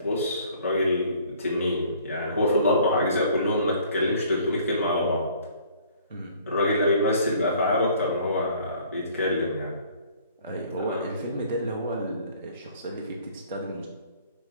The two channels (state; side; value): inverted; both; correlation -0.55